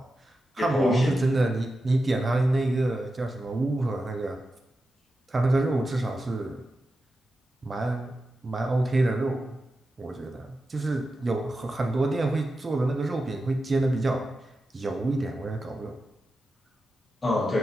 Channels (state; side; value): normal; both; correlation 0.91